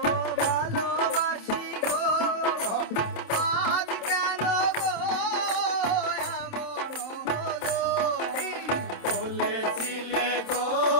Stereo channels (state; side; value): late; right; 27 ms